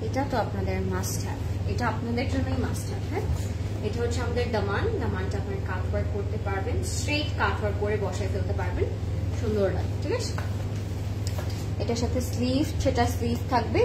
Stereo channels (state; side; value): identical; both; correlation 1.00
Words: এটা তো আপনাদের মাস্ট হ্যাভ, এটা আপনাদের জন্যই মাস্ট হ্যাভ। হ্যাঁ, এটা হচ্ছে আমাদের দামান। দামানটা আপনার কাট ওয়ার্ক করতে পারবেন, স্ট্রেট কাট ওয়ার্ক করে বসায় ফেলতে পারবেন, সুন্দর লাগে। ঠিক আছে, এটার সাথে স্লিভ, সেটা স্লিভ থাকবে,